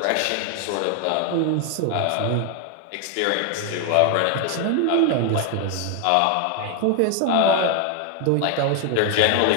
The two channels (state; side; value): different; both; correlation 0.01